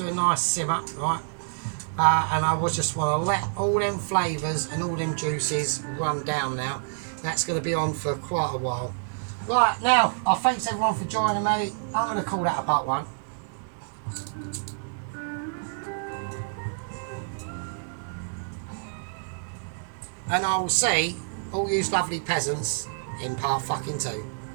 a nice simmer, right? And I was just want to let all them flavours and all them juices run down now. That's going to be on for quite a while. Right, now, I thanks everyone for joining me. I'm going to call that a part one. And I will see all you lovely peasants in part fucking two.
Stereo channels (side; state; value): left; silent; digital silence